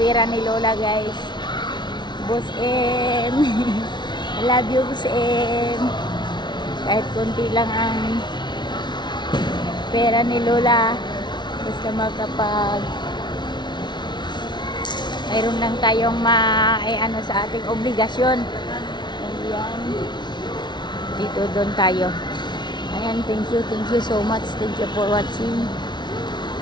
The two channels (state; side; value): late; right; 0.21 ms